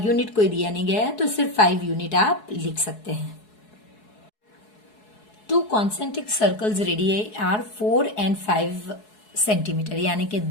यूनिट कोई दिया नहीं गया है तो सिर्फ 5 यूनिट आप लिख सकते हैं। 2 concentric circles radii are 4 and 5 centimetre, यानी कि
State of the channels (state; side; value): late; right; 4.7 ms